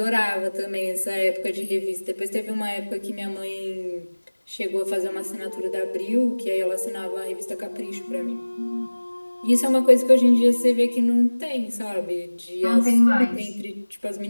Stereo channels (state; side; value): inverted; both; correlation -1.00